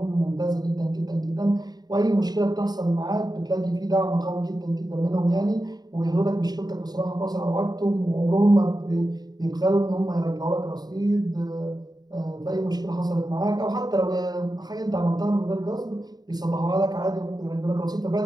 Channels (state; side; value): late; left; 0.19 ms